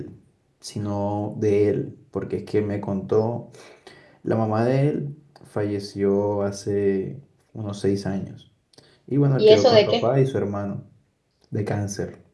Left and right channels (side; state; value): both; identical; correlation 1.00